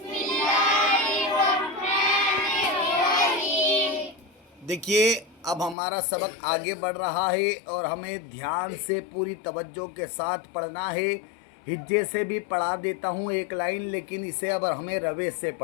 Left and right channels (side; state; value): right; drops out; at 5.8 s